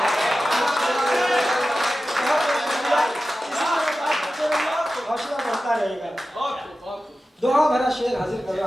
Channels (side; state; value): both; normal; correlation 0.94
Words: हौसला बढ़ता रहेगा। दुआ भरा शेर हाजिर कर